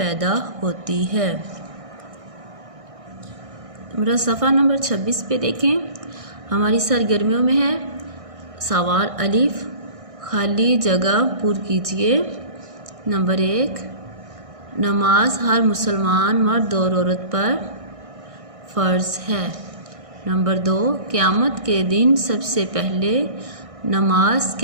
ہوتی ہے۔ میرا صفحہ نمبر 26 پہ دیکھیں، ہماری سرگرمیوں میں ہے سوال الف، خالی جگہ پر کیجیے۔ نمبر 1، نماز ہر مسلمان مرد اور عورت پر فرض ہے۔ نمبر 2، قیامت کے دن سب سے پہلے نماز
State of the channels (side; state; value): left; late; 1.6 ms